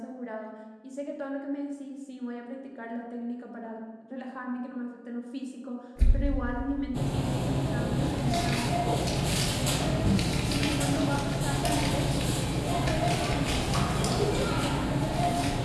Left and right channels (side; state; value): both; identical; correlation 1.00